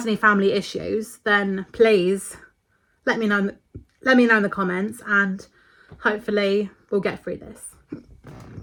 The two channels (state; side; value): identical; both; correlation 1.00